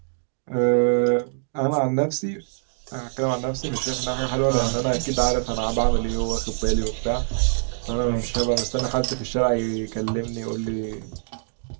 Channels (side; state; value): left; silent; digital silence